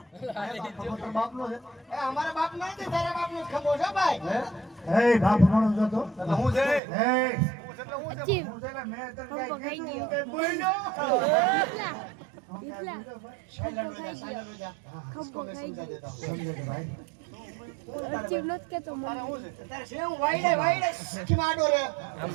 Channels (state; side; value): drops out; left; at 6.8 s